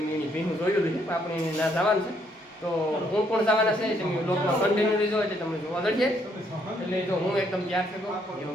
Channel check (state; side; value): normal; both; correlation 0.70